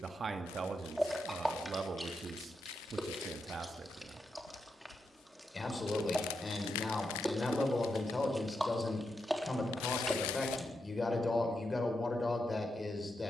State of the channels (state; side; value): normal; both; correlation 0.85